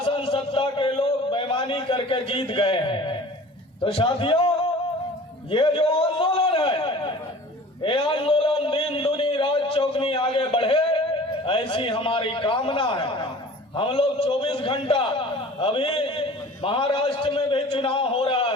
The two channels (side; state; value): both; normal; correlation 0.44